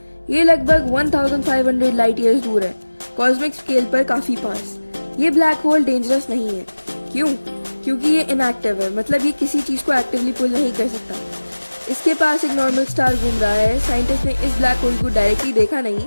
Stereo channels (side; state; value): both; inverted; correlation -1.00